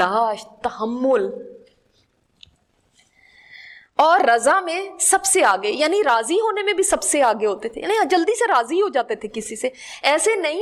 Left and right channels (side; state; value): both; identical; correlation 1.00